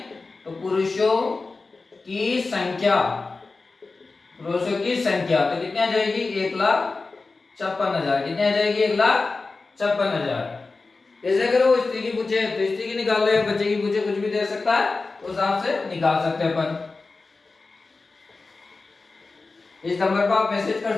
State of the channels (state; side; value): quieter; right; 3.8 dB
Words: तो पुरुषों की संख्या तो कितनी आ जाएगी? 1,56,000। कितनी आ जाएगी? 1,56,000। ऐसे अगर वो स्त्री की पूछे तो स्त्री की निकाल ले, बच्चे की पूछे कुछ भी दे सकता है, उस हिसाब से निकाल सकते हैं अपन। इस नंबर पर आप मैसेज कर